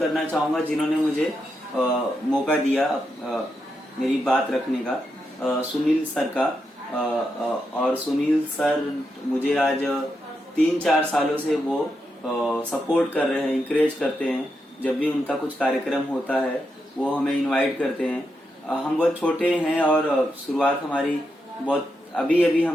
चाहूंगा जिन्होंने मुझे मौका दिया मेरी बात रखने का, सुनील सर का। और सुनील सर मुझे आज 3-4 सालों से वो सपोर्ट कर रहे हैं, इंकरेज करते हैं। जब भी उनका कुछ कार्यक्रम होता है वो हमें इनवाइट करते हैं। हम बहुत छोटे हैं और शुरुआत हमारी बहुत अभी अभी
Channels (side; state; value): both; normal; correlation 0.84